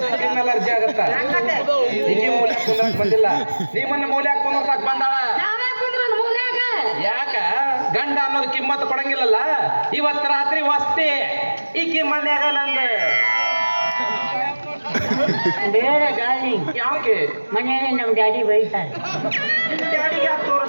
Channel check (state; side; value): inverted; both; correlation -1.00